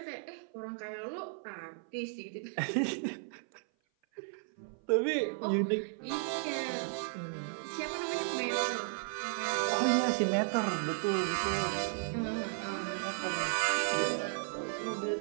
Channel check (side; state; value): left; silent; 55 dB below the other